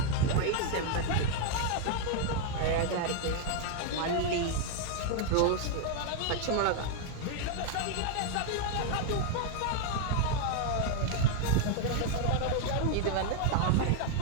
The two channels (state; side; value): different; both; correlation 0.00